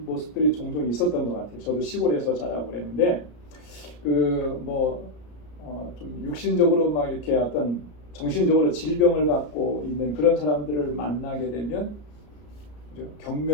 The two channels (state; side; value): late; right; 34 ms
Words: 모습들이 종종 있었던 것 같아요. 저도 시골에서 자라고 그랬는데 좀 육신적으로 막 이렇게 어떤 정신적으로 질병을 갖고 있는 그런 사람들을 만나게 되면 그죠?